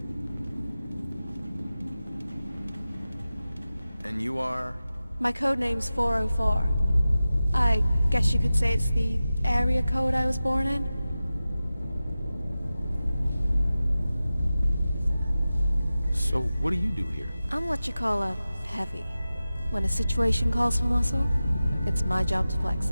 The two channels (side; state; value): both; inverted; correlation -0.95